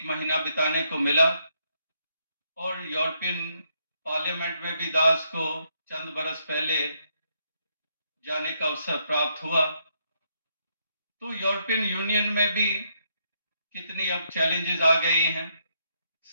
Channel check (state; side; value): inverted; both; correlation -0.75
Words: महीना बिताने को मिला और यूरोपियन पार्लियामेंट में भी दास को चंद बरस पहले जाने का अवसर प्राप्त हुआ। तो यूरोपियन यूनियन में भी कितनी अब चैलेंजेस आ गई हैं।